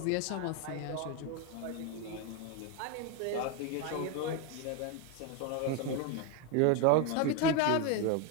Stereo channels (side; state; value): both; different; correlation 0.02